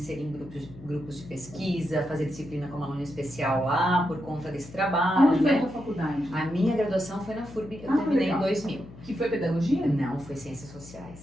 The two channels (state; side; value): noise; left; hum, 18 dB below the sound